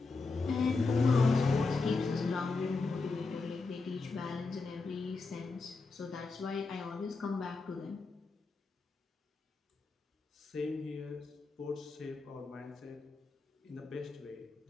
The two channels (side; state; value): right; quieter; 4.0 dB